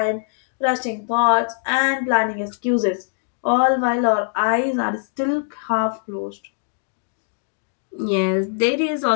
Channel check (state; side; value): silent; right; digital silence